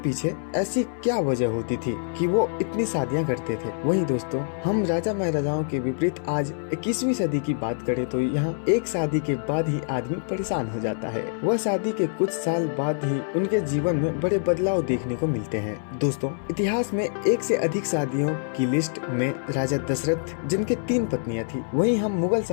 ऐसी क्या वजह होती थी कि वो इतनी शादियां करते थे। वही दोस्तों, हम राजा महाराजाओं के विपरीत आज 21वीं सदी की बात करें तो यहाँ एक शादी के बाद ही आदमी परेशान हो जाता है। वह शादी के कुछ साल बाद ही उनके जीवन में बड़े बदलाव देखने को मिलते हैं। दोस्तों, इतिहास में एक से अधिक शादियों की लिस्ट में राजा दशरथ जिनके 3 पत्नियां थी। वहीं हम मुगल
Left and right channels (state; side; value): silent; right; 61 dB below the other